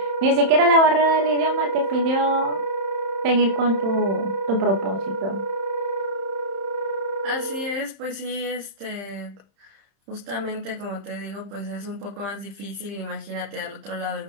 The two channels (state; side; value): late; left; 31 ms